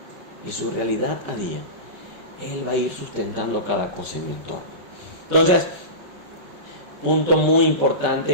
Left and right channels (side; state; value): left; late; 5.2 ms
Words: y su realidad a día, Él va a ir sustentando cada cosa en mi entorno. Entonces, punto muy